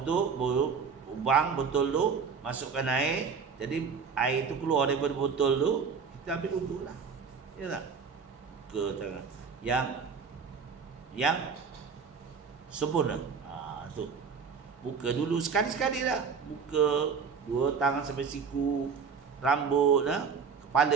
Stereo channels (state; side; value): quieter; left; 5.8 dB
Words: lubang botol tu, masukkan air. Jadi air tu keluar daripada botol tu, kita ambil untuk lah. Ya tak? Ke tangan yang sempurna. Tu. Buka dulu sekali-sekali lah. Buka 2 tangan sampai siku, rambut,